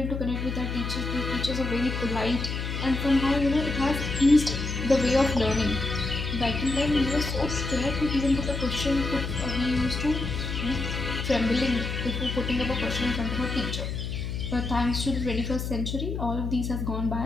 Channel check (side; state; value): left; noise; hum, 4 dB below the sound